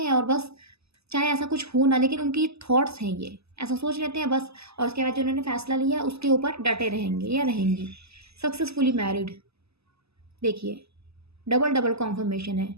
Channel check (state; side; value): late; left; 0.79 ms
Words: हैं, और बस चाहे ऐसा कुछ हो ना, लेकिन उनकी थॉट्स हैं ये, ऐसा सोच लेते हैं बस, और उसके बाद जो उन्होंने फैसला लिया उसके ऊपर डटे रहेंगे या रहेंगी। Successfully married. देखिए, डबल कॉन्फर्मेशन है,